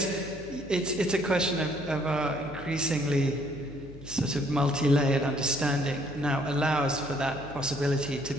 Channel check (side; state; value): left; noise; hum, 17 dB below the sound